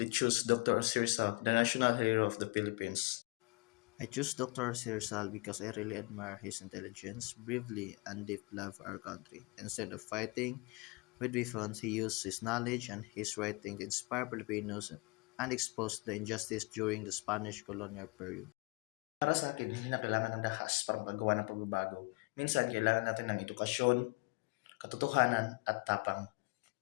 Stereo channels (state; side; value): quieter; right; 27.9 dB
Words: choose Dr. Sirsa, the national hero of the Philippines. I choose Dr. Sirsal because I really admire his intelligence, bravery, and deep love for our country. Instead of fighting with weapons, he used his knowledge and his writing to inspire Filipinos and expose the injustice during the Spanish colonial period. Para sa akin, hindi na kailangan ng dahas para magawa ng pagbabago. Minsan, kailangan natin ng edukasyon, katotohanan, at tapang.